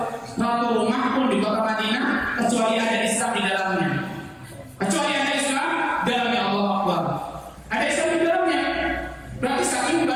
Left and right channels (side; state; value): both; identical; correlation 1.00